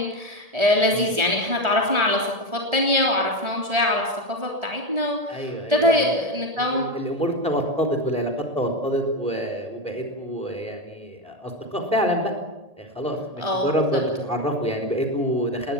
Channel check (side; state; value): left; late; 1.8 ms